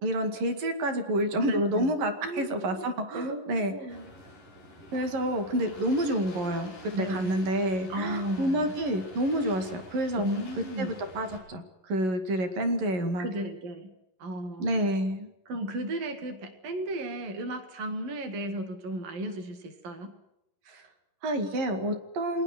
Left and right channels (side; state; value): left; late; 11 ms